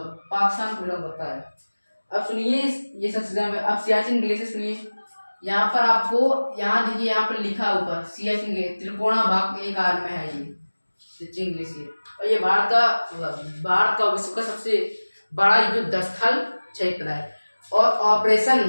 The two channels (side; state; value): both; inverted; correlation -1.00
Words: पाकिस्तान को बिलोंग करता है। अब सुनिए ये सब चीजें, अब सियाचिन ग्लेशियर सुनिए। यहाँ पर आपको यहाँ देखिए, यहाँ पर लिखा ऊपर सियाचिन ग्लेशियर त्रिकोणा भाग के आकार में है ये सियाचिन ग्लेशियर, और ये भारत का विश्व का सबसे बड़ा युद्ध स्थल क्षेत्र है। और ऑपरेशन